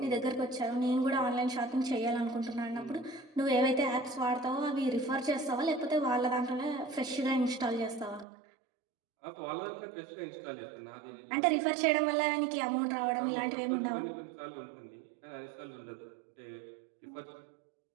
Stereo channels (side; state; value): left; drops out; at 8.2 s